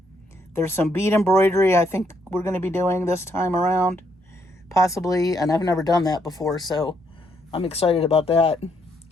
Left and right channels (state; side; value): normal; both; correlation 0.73